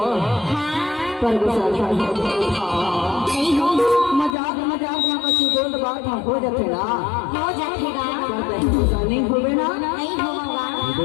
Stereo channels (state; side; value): drops out; right; at 4.4 s